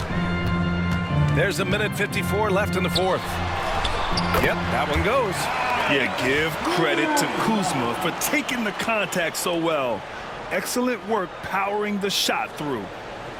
There's 1:54 left in the fourth. Yep, that one goes. Yeah, give credit to Kuzma for taking the contact so well. Excellent work powering the shot through.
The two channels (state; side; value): identical; both; correlation 1.00